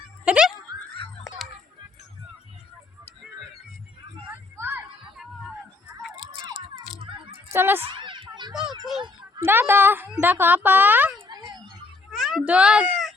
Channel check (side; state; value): right; quieter; 3.6 dB